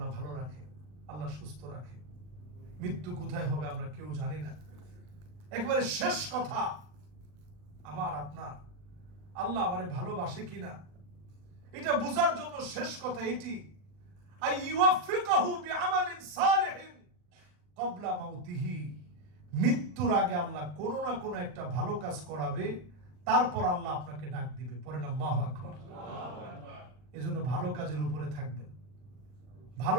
ভালো রাখে, আল্লাহ সুস্থ রাখে। মৃত্যু কোথায় হবে আমরা কেউ জানি না। একেবারে শেষ কথা আমার আপনার, আল্লাহ আমারে ভালোবাসে কিনা এটা বোঝার জন্য শেষ কথা এটি, আই ইউফিকাহু বিআমালিন সালিহিন ক্বাবলা মাউতিহি। মৃত্যুর আগে আল্লাহ কোনো না কোনো একটা ভালো কাজ করাবে, তারপর আল্লাহ আপনাকে ডাক দিবে। পড়েন আল্লাহু আকবার। এজন্য ভালো কাজের উপরে থাকবেন,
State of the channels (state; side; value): late; left; 39 ms